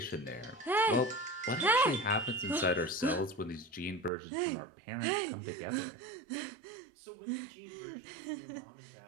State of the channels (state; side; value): drops out; left; at 4.1 s